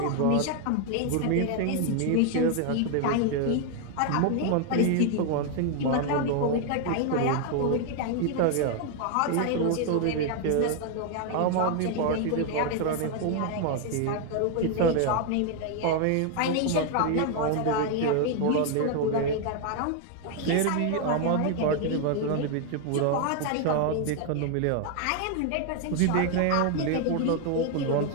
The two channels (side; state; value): both; different; correlation 0.01